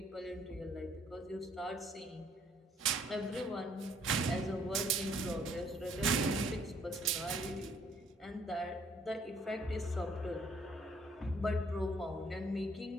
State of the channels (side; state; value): both; normal; correlation 0.63